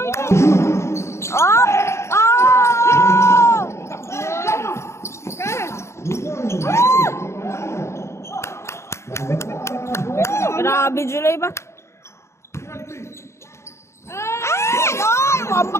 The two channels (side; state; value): right; late; 0.13 ms